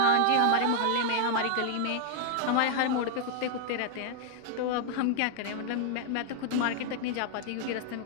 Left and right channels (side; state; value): both; different; correlation -0.01